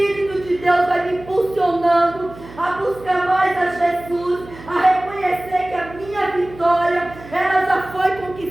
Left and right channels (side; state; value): right; noise; hum, 18 dB below the sound